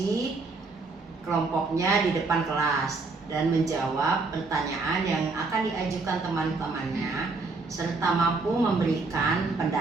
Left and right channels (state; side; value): quieter; left; 3.8 dB